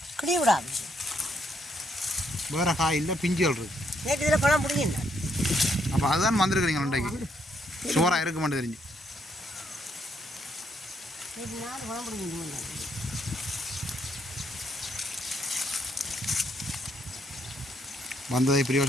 கிளி விடாது. வேறு காய் இல்லை, பிஞ்சுகள் இருக்கு. நேற்று இதில் பழம் பிடிங்கிங்க. அப்போ அதுதான் வந்துருக்குறீங்க இன்றைக்கு. சோறாக இருக்க மாட்டேன் தெரிஞ்சு. நேற்று 4 பழம் பிடிங்கிட்டு வந்ததை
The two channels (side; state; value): both; normal; correlation 0.74